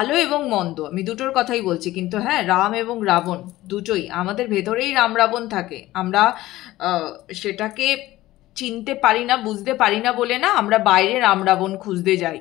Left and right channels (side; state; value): right; quieter; 16.6 dB